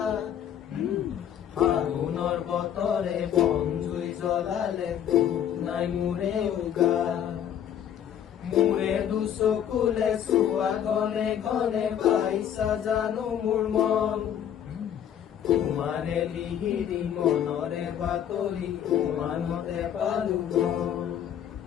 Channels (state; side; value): quieter; right; 9.6 dB